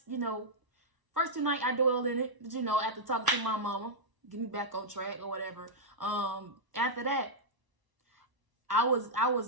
First 2 nights I dwelled in it. But after talking to my mama, get me back on track or whatever. After that, I was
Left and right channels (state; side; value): late; left; 1.0 ms